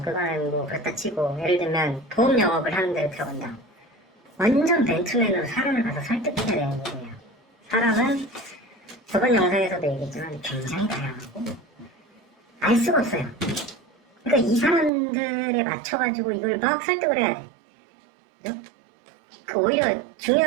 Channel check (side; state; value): left; drops out; at 14.9 s